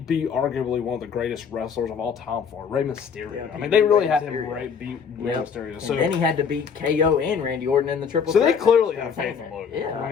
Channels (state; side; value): quieter; right; 6.5 dB